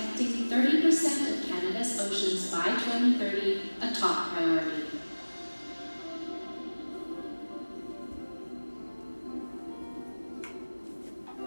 30% of Canada's oceans by 2030 a top priority.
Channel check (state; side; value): inverted; both; correlation -1.00